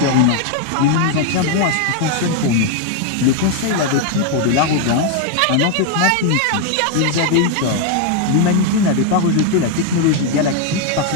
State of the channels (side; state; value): both; different; correlation 0.01